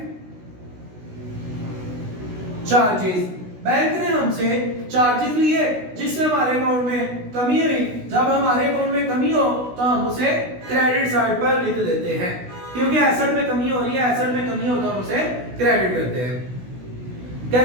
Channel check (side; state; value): left; late; 16 ms